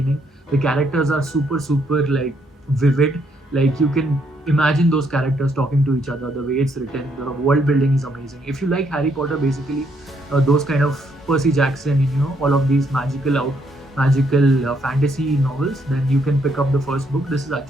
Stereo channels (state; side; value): normal; both; correlation 0.73